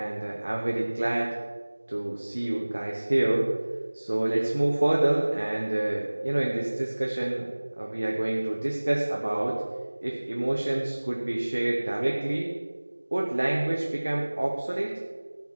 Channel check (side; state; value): both; inverted; correlation -1.00